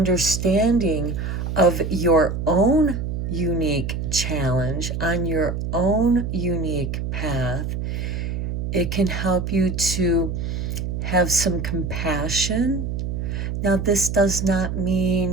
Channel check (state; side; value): noise; right; hum, 3 dB below the sound